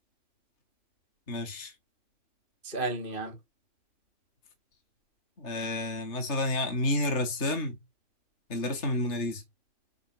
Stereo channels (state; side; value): late; right; 3.3 ms